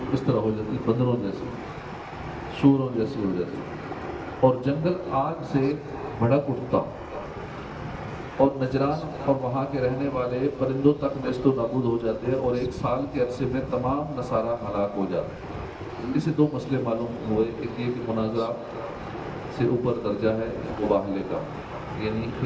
اس طرح ہو جاتی، بندروں جیسی، سوروں جیسی ہو جاتی، اور جنگل آگ سے بھڑک اٹھتا، اور نجران اور وہاں کے رہنے والے پرندوں تک نیست و نابود ہو جاتے ہیں، اور 1 سال کے عرصے میں تمام نصارہ ہلاک ہو جاتے ہیں۔ اس سے 2 مسئلے معلوم ہوئے، ایک یہ کہ مناظرہ سے اوپر درجہ ہے مباہلے کا، یعنی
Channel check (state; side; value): identical; both; correlation 1.00